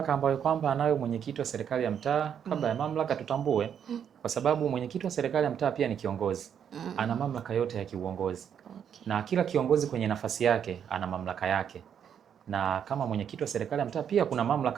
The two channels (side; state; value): left; quieter; 8.4 dB